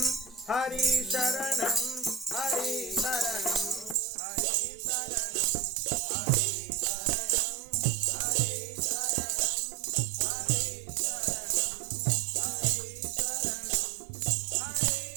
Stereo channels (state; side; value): drops out; left; at 4.0 s